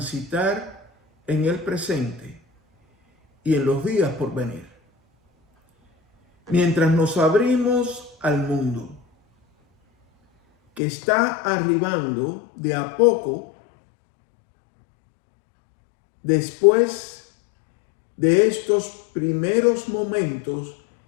en el presente y en los días por venir. Mientras nos abrimos al mundo, que está arribando de a poco después de estos primeros momentos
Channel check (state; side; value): drops out; right; at 10.8 s